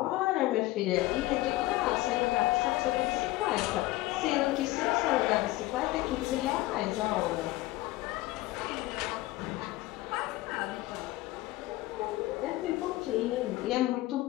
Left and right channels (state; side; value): quieter; right; 18.0 dB